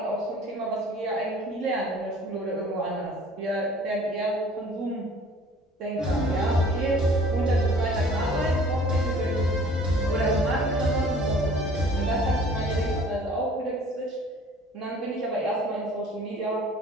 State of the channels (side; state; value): both; normal; correlation 0.50